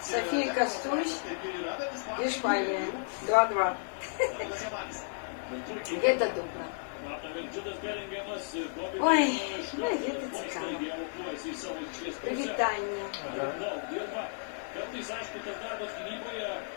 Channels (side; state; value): right; silent; 56 dB below the other